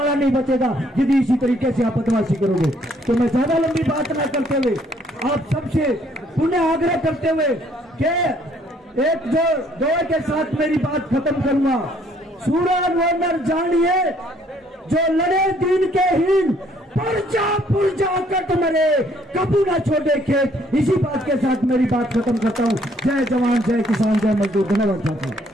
नहीं बचेगा यदि इसी तरीके से आप बदमाशी करोगे। तो मैं ज्यादा लंबी बात न करते हुए आप सबसे पुनः आग्रह करते हुए कि एक जो दोहे के साथ मेरी बात खत्म करूंगा। सूरज वनर जानिए जो लड़े दिन के हीन, पुरजा कट मरे कबू न छोड़े खेत। इसी बात के साथ मेरी बात खत्म करता हूँ। जय जवान, जय किसान, जय मजदूर। धन्यवाद साथियों।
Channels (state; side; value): normal; both; correlation 0.64